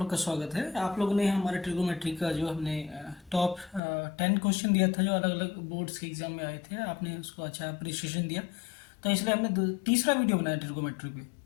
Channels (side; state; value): right; drops out; at 3.8 s